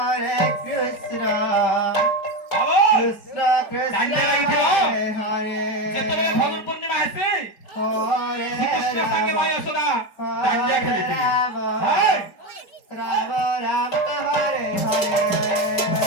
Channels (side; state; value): right; late; 5.2 ms